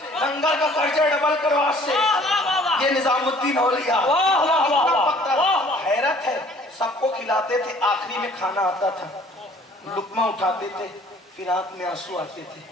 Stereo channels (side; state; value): both; normal; correlation 0.55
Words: निजामुद्दीन औलिया। वाह वाह वाह वाह। हैरत है, सबको खिलाते थे, आखिरी में खाना आता था, लुकमा उठाते थे, फिर आंख में आंसू आते थे,